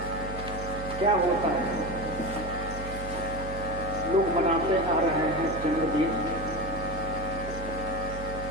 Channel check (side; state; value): right; noise; hum, 9 dB below the sound